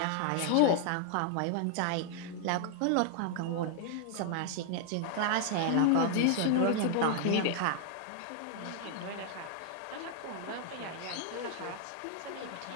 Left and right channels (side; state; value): both; different; correlation 0.00